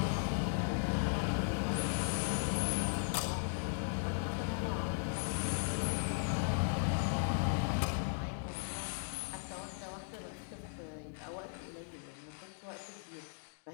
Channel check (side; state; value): right; silent; digital silence